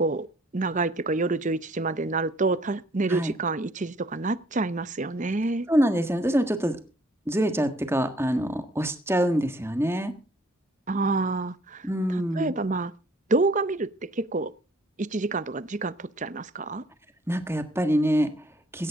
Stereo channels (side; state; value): both; normal; correlation 0.60